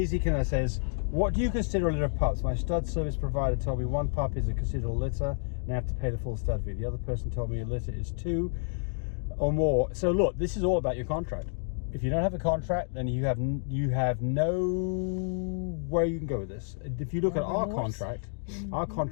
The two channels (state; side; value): silent; right; digital silence